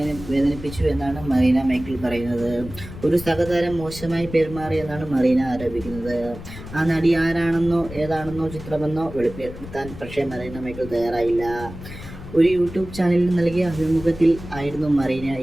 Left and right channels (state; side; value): noise; left; rumble, 13 dB below the sound